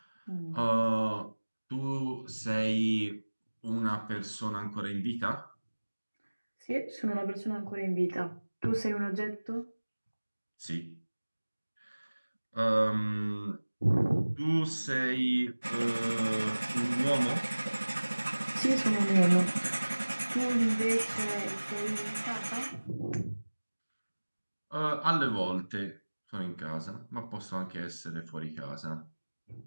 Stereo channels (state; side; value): inverted; both; correlation -1.00